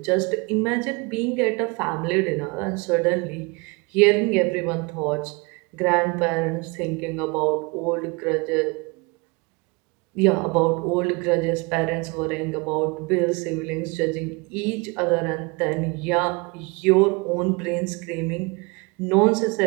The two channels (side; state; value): left; quieter; 28.0 dB